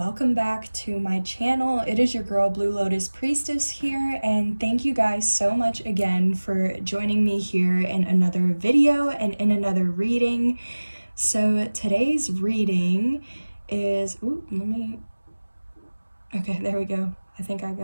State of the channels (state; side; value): inverted; both; correlation -1.00